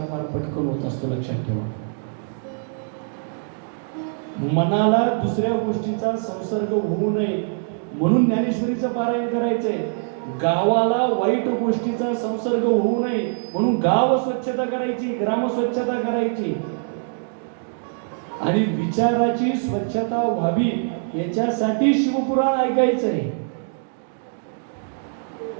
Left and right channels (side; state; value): left; silent; digital silence